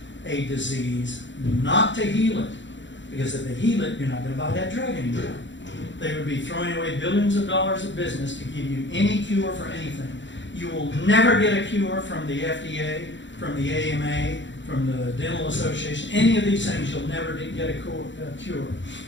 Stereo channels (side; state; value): right; late; 0.54 ms